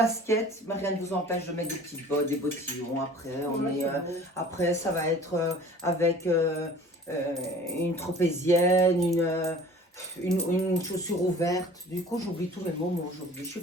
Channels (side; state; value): both; normal; correlation 0.46